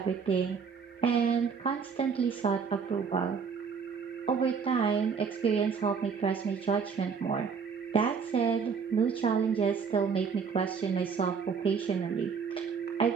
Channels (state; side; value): quieter; left; 5.9 dB